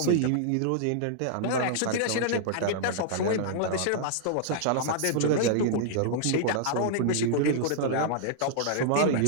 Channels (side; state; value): both; different; correlation -0.01